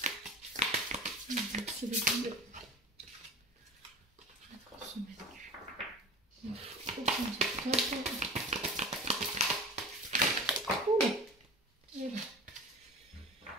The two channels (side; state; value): both; normal; correlation 0.36